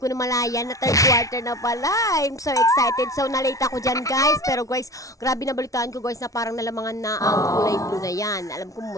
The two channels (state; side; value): late; right; 0.17 ms